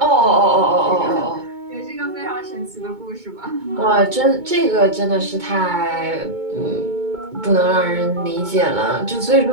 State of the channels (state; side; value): late; left; 2.2 ms